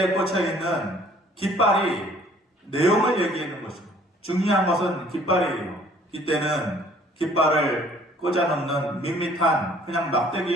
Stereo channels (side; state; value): both; normal; correlation 0.57